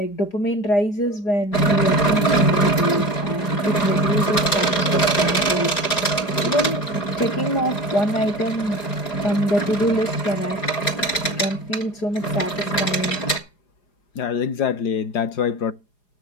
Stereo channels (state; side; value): late; right; 4.9 ms